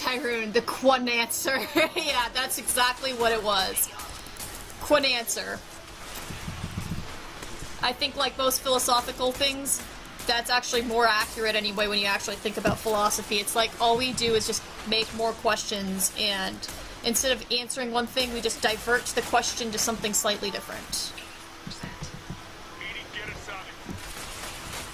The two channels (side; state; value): both; identical; correlation 1.00